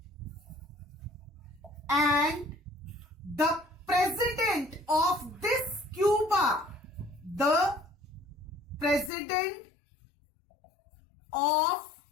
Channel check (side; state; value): right; drops out; at 9.1 s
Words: and the president of this Cuba, the president of